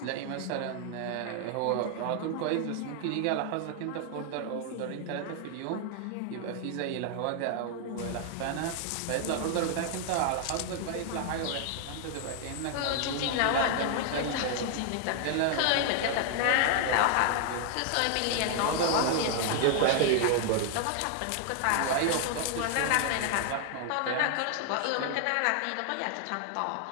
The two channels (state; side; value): different; both; correlation 0.00